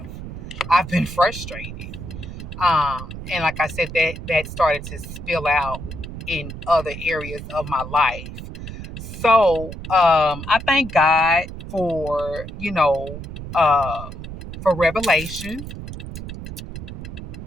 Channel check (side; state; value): right; noise; rumble, 10 dB below the sound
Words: I've been frustrated. And like I said, that started to spill out in other areas of my life. So I thank God for, for revelation,